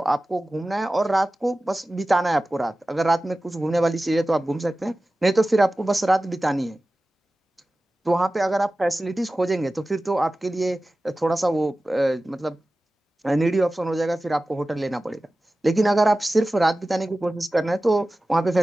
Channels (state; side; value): normal; both; correlation 0.96